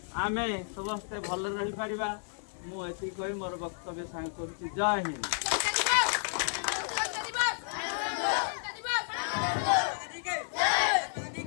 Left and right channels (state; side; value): silent; right; digital silence